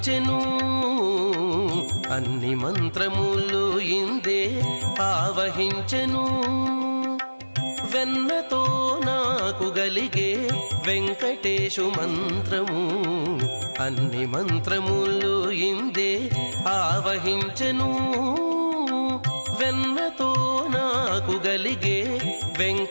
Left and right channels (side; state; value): both; inverted; correlation -1.00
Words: అన్ని మంత్రములు ఇందే ఆవహించెను వెన్నతో నాకు గలిగే వెంకటేశు మంత్రము అన్ని మంత్రములు ఇందే ఆవహించెను వెన్నతో నాకు గలిగే